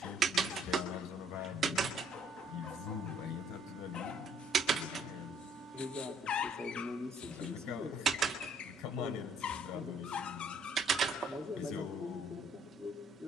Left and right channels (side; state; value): both; normal; correlation 0.64